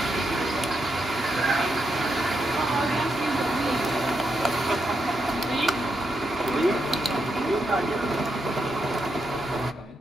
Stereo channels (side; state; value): both; normal; correlation 0.82